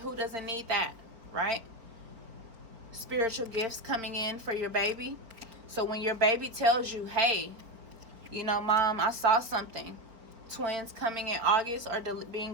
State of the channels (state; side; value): late; left; 4.6 ms